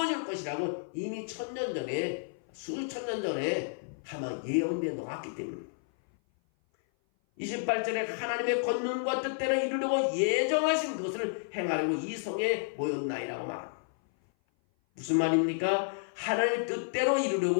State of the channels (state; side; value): silent; right; 56 dB below the other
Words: 것이라고 이미 1000년 전에 수천 년 전에 아마 예언되어 놓았기 때문입니다. 28절에 하나님의 권능과 뜻대로 이루려고 예정하신 것을 행하려고 이 성에 모였나이라고 말합니다. 무슨 말입니까? 하나님의 뜻대로